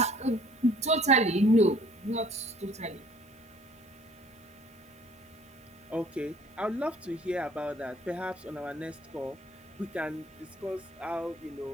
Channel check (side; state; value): both; normal; correlation 0.56